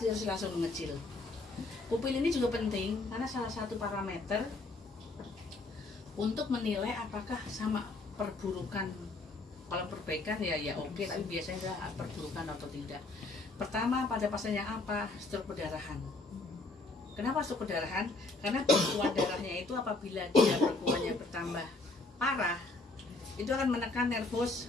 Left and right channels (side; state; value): right; quieter; 3.3 dB